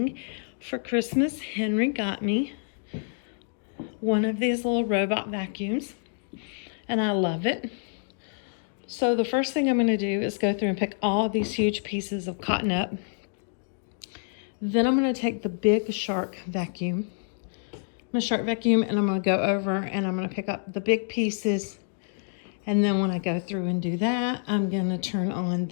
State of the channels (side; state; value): right; silent; digital silence